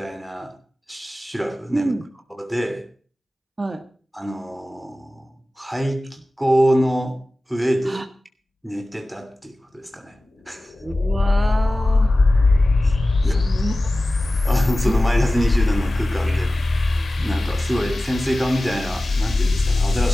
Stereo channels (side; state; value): both; normal; correlation 0.96